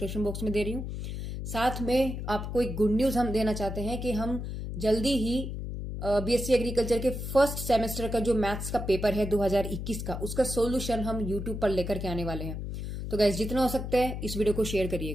बॉक्स में दे रही हूँ। साथ में आपको एक गुड न्यूज हम देना चाहते हैं कि हम जल्दी ही बीएससी एग्रीकल्चर के फर्स्ट सेमेस्टर का जो मैथ्स का पेपर है 2021 का, उसका सोल्यूशन हम यूट्यूब पर लेकर के आने वाले हैं। तो गाइज जितना हो सकता है इस वीडियो को शेयर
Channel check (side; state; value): left; noise; hum, 5 dB below the sound